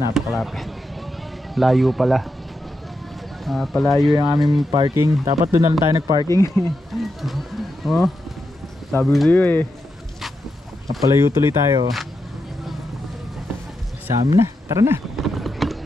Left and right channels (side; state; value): both; normal; correlation 0.86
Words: napakalapit. Layo pala. Palayo yung aming parking. Dapat doon na lang tayo nagparking. Oh, sabi ko sa'yo eh. Napalayo tuloy tayo. Sa amin na, tara na.